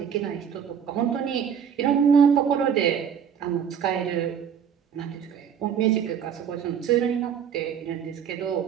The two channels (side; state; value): left; quieter; 7.9 dB